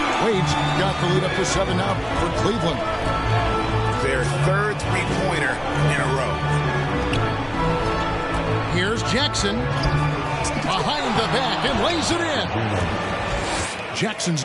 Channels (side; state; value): both; identical; correlation 1.00